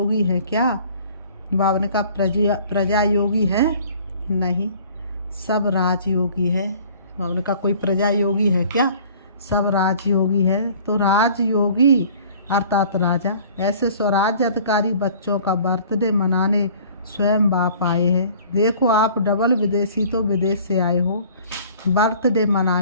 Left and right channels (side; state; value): both; inverted; correlation -0.51